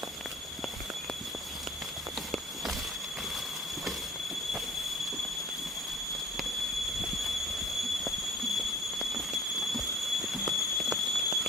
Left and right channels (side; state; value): both; normal; correlation 0.46